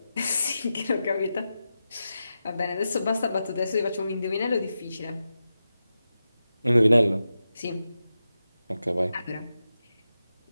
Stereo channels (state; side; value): inverted; both; correlation -0.91